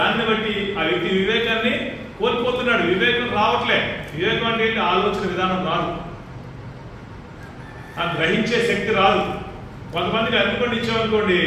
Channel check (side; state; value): both; identical; correlation 1.00